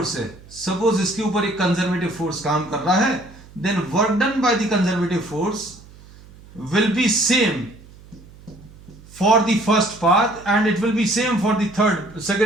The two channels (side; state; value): right; noise; hum, 22 dB below the sound